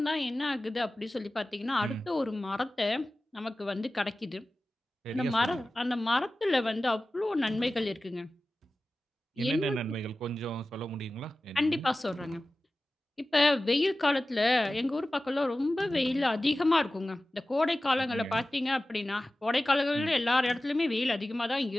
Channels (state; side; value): normal; both; correlation 0.96